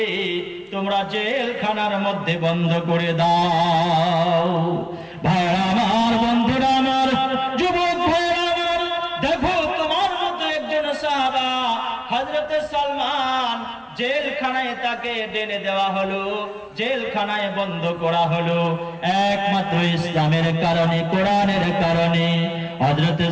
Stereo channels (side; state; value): both; identical; correlation 1.00